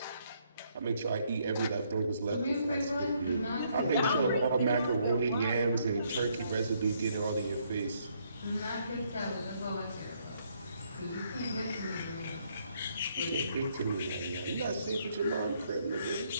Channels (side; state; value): both; inverted; correlation -0.71